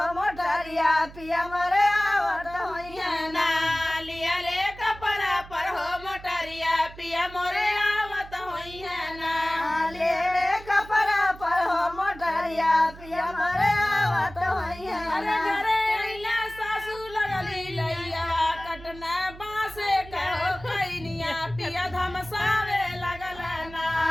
मोटरिया पिया मोरे आवत होइया ना लियले कपड़ा पर हो मोटरिया पिया मोरे आवत होइया ना लियले कपड़ा पर हो मोटरिया पिया मोरे आवत होइया अरे ना घरे अइला सासू लगली लैया कटना बासे कहो कैनिया पिया धमसावे लगल ना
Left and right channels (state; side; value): noise; right; hum, 17 dB below the sound